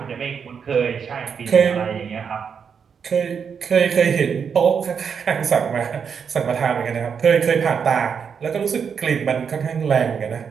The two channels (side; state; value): left; quieter; 6.7 dB